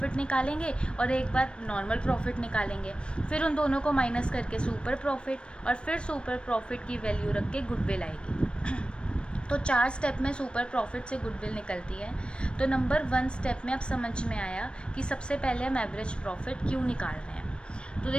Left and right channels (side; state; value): right; late; 0.056 ms